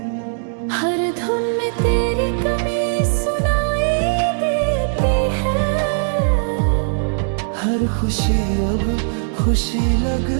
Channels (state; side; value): silent; left; digital silence